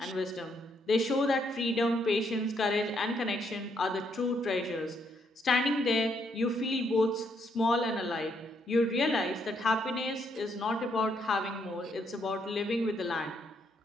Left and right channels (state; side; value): normal; both; correlation 0.73